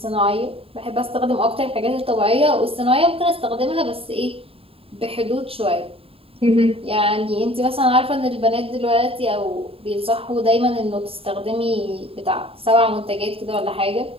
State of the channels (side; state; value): left; late; 0.27 ms